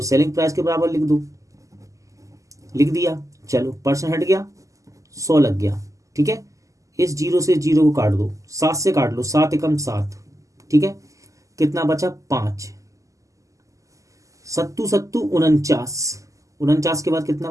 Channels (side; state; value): left; late; 0.16 ms